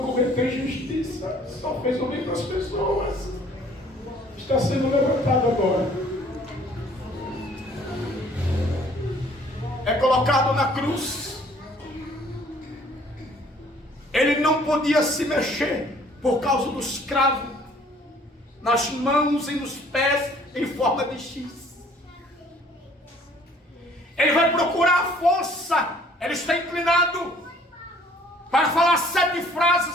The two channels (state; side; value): normal; both; correlation 0.57